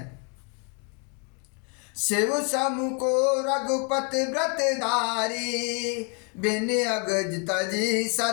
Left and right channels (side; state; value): right; quieter; 37.4 dB